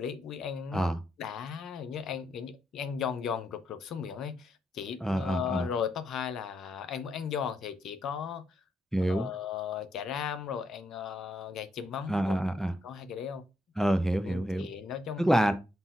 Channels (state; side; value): normal; both; correlation 0.78